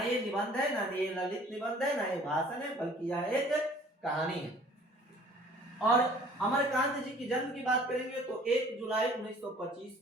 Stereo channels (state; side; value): normal; both; correlation 0.52